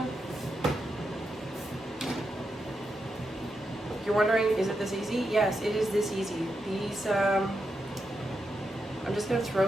You're wondering, is it this easy? Yes, it is this easy. These, I'm just gonna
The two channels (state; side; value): normal; both; correlation 0.85